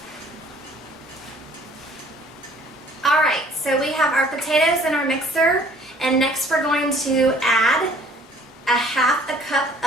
Alright, so we have our potatoes in our mixer, and next we're going to add a half a cup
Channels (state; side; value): normal; both; correlation 0.55